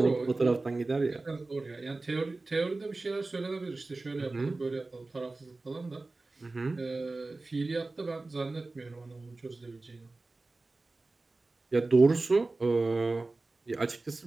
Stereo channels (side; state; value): left; quieter; 3.3 dB